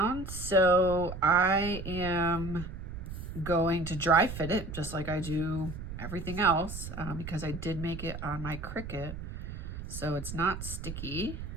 so I am going to dry fit it just like I do everything else because I did make it on my Cricut, so it's not sticky.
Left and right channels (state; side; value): noise; right; rumble, 8 dB below the sound